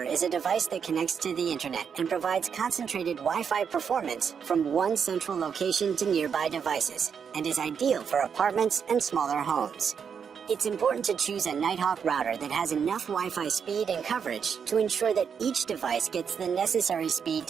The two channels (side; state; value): left; quieter; 6.9 dB